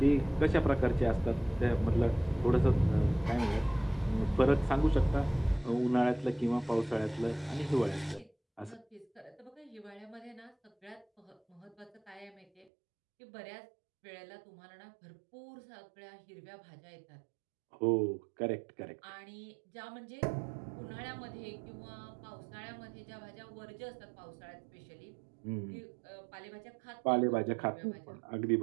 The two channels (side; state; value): left; drops out; at 12.7 s